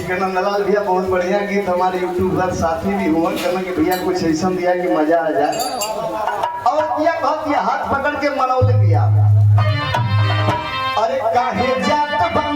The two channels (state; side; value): identical; both; correlation 1.00